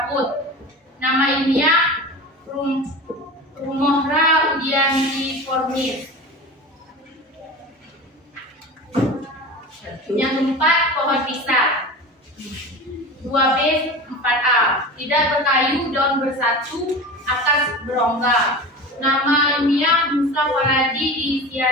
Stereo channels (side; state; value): both; normal; correlation 0.32